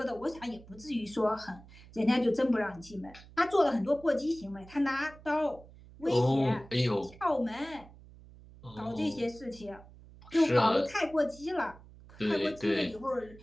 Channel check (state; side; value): noise; right; hum, 21 dB below the sound